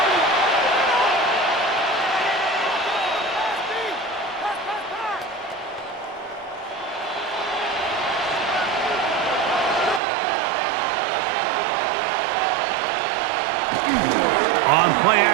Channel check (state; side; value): drops out; left; at 10.0 s